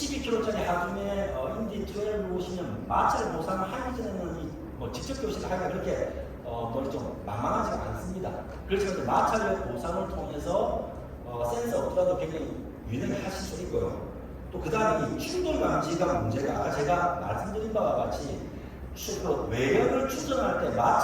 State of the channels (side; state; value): both; identical; correlation 1.00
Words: 하중에 인디 12를 보시면 마찰 보상을 하기 전에는 직접 교시를 하기가 그렇게 좀 만만하지가 않습니다. 그렇지만 마찰력 보상을 통해서 센서 없더라도 굉장히 유연하게 하실 수 있고요. 또 그 다음에 이 충돌 감지가 문제가 아까 제가 말씀드린 바와 같이 외력을 추정할 때